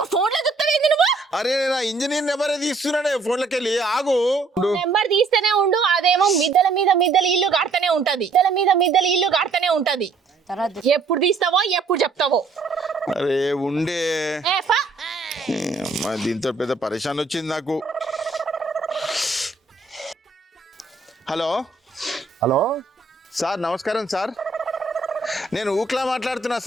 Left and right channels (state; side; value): quieter; left; 4.0 dB